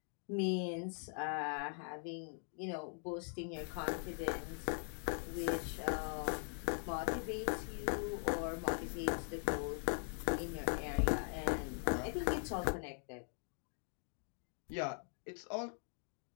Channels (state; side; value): silent; right; 50 dB below the other